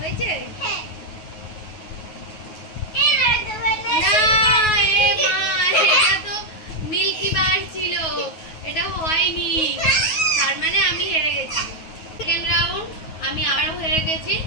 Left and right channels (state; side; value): late; right; 9.4 ms